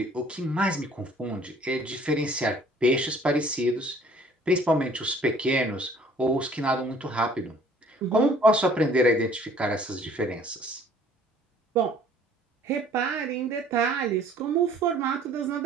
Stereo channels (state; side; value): normal; both; correlation 0.55